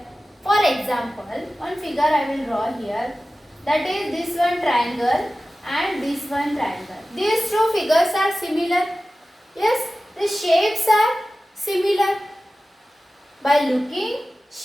For example, one figure I will draw here. That is this one triangle and this one triangle. These two figures are similar. Yes, the shapes are similar. By looking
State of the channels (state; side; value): normal; both; correlation 0.95